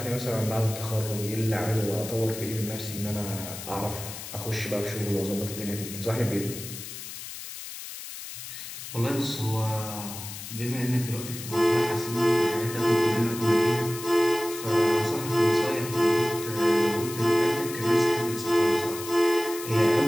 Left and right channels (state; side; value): noise; left; hiss, 10 dB below the sound